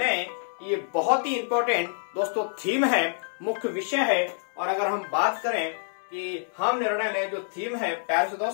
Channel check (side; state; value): right; silent; 60 dB below the other